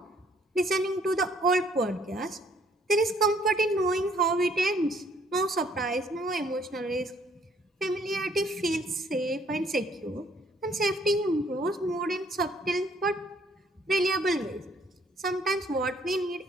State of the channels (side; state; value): both; normal; correlation 0.64